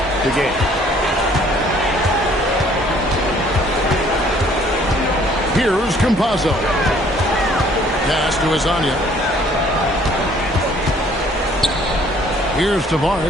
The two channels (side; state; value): both; normal; correlation 0.59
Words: the game. Here's Campazzo. Pass to Azania. Here's